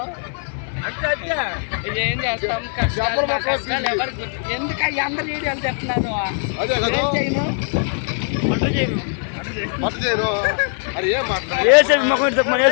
ఏం చేస్తాం. కష్టాలు మా కష్టాలు ఎవరికి ఎందుకు అందరు వీడియోలు చెప్తున్నాను. ఏం చేయను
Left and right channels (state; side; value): silent; right; 58 dB below the other